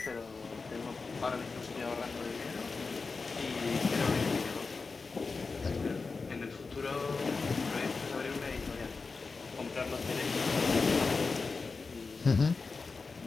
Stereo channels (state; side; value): quieter; right; 4.3 dB